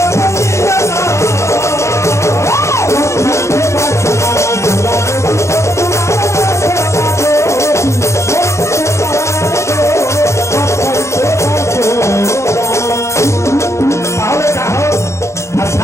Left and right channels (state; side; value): late; right; 0.14 ms